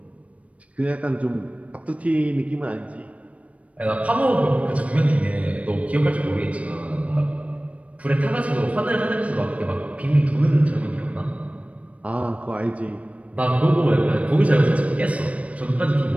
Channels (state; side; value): late; left; 0.065 ms